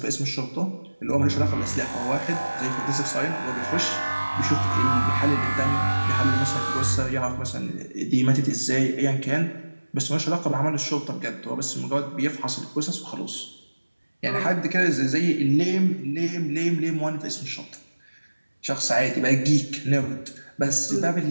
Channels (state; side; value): inverted; both; correlation -1.00